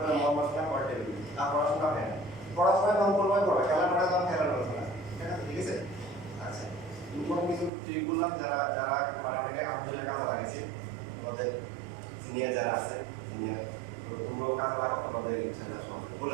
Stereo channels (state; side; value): drops out; left; at 7.7 s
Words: করে মহামাসনা পড়তে দিবি, আর পড়াশোনা হয় না, পড়াশোনা কম করবে পড়া, খেলার মাঠে কম খেলার আলোচনা, ঠিক আছে? আচ্ছা, ইম্পর্টেন্ট কিছু ট্রিক বললাম, যারা যারা মানে অনেকে আলহামদুলিল্লাহ কাজে লাগিয়েছে, আমাদের সিনিয়র যারা আছে সিনিয়র, তোমরাও কাজে লাগাও, তোমাদের ইচ্ছাটা সব